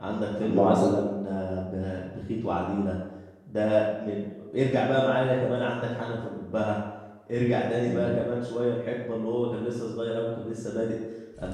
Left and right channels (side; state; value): both; identical; correlation 1.00